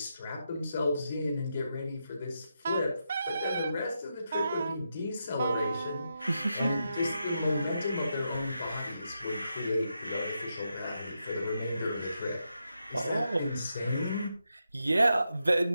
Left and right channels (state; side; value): inverted; both; correlation -0.85